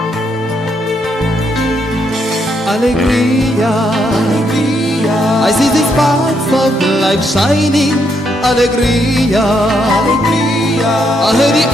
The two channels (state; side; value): normal; both; correlation 0.76